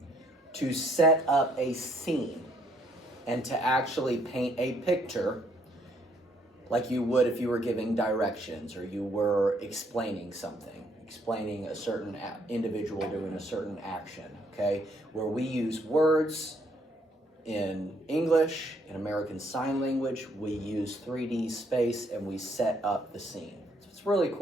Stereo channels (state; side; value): normal; both; correlation 0.69